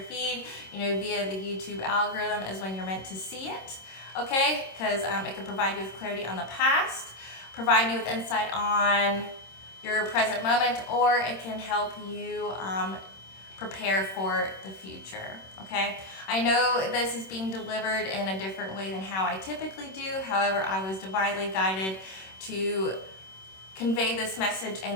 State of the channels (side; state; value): right; late; 26 ms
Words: feed, via the YouTube algorithm is when you're meant to see it. Okay, because it can provide you with clarity on the past, provide you with insight on your present moment, or it can help you prepare for the future. Okay, I know this is being delivered in a different way than how I typically do. However, I was divinely guided to convey this message